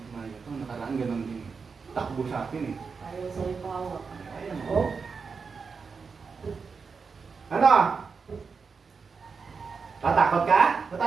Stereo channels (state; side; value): quieter; left; 5.2 dB